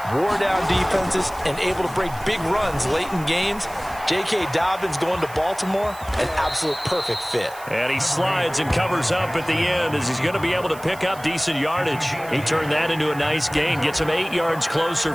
Wore down defenses and able to break big runs late in games. J.K. Dobbins going to Baltimore, an absolute perfect fit. And he slides and covers up at the end as he's going to be able to pick up decent yardage. He turned that into a nice gain, gets him 8 yards closer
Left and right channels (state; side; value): noise; right; hiss, 19 dB below the sound